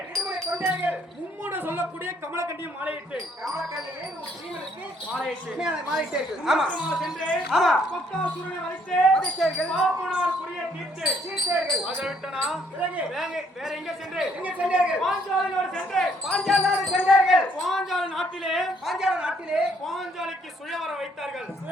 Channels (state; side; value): normal; both; correlation 0.67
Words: மும்முட சொல்லக்கூடிய கமலக்கட்டியும் மாலையிட்டு சென்று கொக்காசுரனை வளைத்து பாப்பனார் புரிய தீர்த்து அதை விட்டனா வேற எங்க சென்று பாஞ்சாலனோடு சென்று பாஞ்சால நாட்டிலே பாஞ்சாலிக்கு சுயவரம் வைத்தார்கள்.